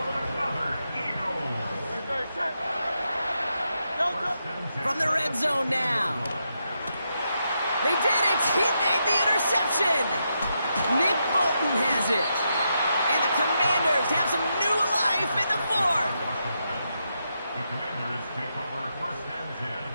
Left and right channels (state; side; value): inverted; both; correlation -0.83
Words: From the red zone now. They did it! He made the interception! Nick Bolton has it. And the Commanders have some new life in the 4th. The Commanders take over 1st and 10